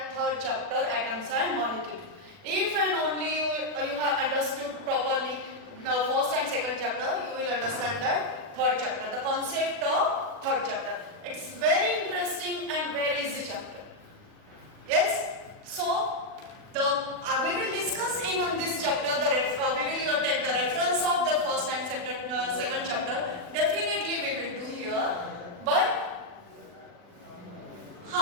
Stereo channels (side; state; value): left; late; 40 ms